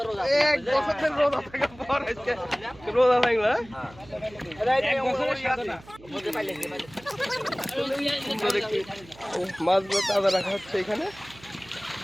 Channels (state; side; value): noise; right; hum, 22 dB below the sound